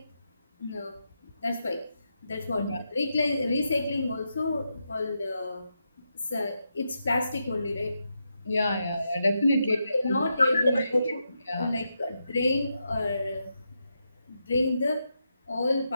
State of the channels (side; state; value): both; inverted; correlation -0.85